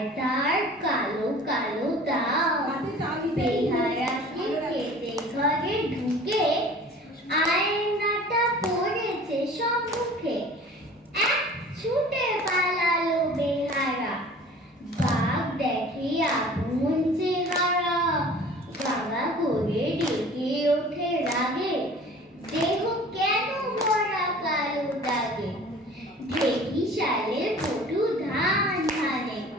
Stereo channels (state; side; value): normal; both; correlation 0.45